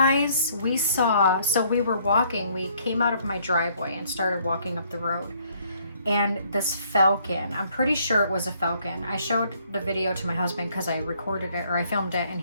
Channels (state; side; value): inverted; both; correlation -0.64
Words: we saw, so we were walking, we came out of my driveway and started walking up the road. and this falcon, I'm pretty sure it was a falcon. I showed the video to my husband because I recorded it, or I filmed it, and